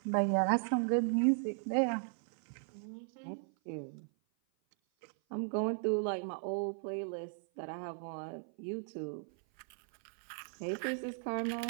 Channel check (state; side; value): silent; left; 53 dB below the other